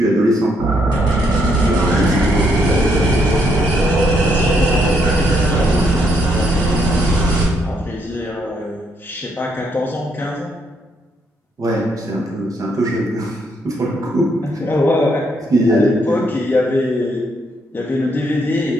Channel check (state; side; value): normal; both; correlation 0.74